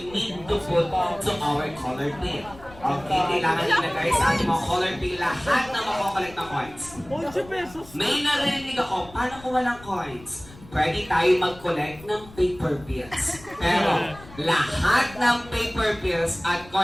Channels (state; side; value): noise; left; rumble, 20 dB below the sound